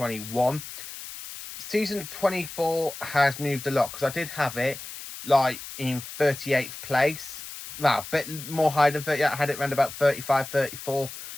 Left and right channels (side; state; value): left; noise; hiss, 12 dB below the sound